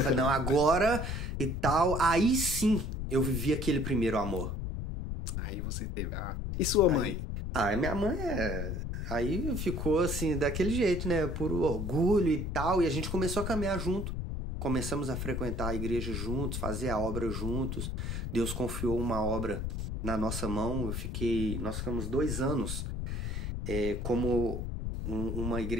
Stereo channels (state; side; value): noise; left; rumble, 3 dB below the sound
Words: não, agora e tal. Aí sim eu vivi aquele primeiro amor. Aí você teve. E sua mãe? Minha mãe Aí ficou assim, daquele jeito, né? Por orgulho e tal. E a gente começou a caminhar junto. Começamos a frequentar a igreja juntos, fazer a obra juntos. Deus confiou uma obra na nossa mão. Nós ficamos 2 anos como uma